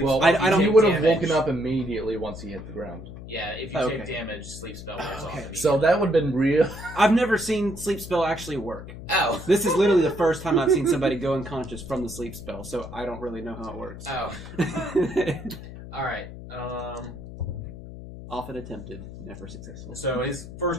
Well, spell, I don't- he take would have damage. woken up immediately once he hit the ground. Yeah, if you Okay. take damage, sleep spell wears off Okay. immediately. So that would have been real. I've never seen sleep spell actually work. Oh. This is literally the first time I've seen somebody go unconscious from the sleep spell, so I don't really know how it works. Oh. Alright. Often attempted, never successful. So his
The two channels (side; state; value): left; noise; hum, 13 dB below the sound